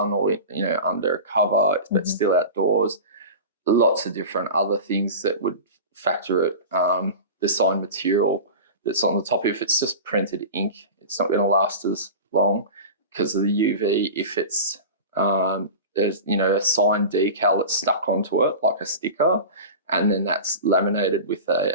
or under a cover, but still outdoors. Lots of different other things that would factor it. The sign material that's on the top, if it's just printed ink, it's not going to last as long because of the UV. If it's there's a sign decal that's stuck onto it like a sticker, and then that's laminated with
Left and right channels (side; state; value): both; inverted; correlation -0.31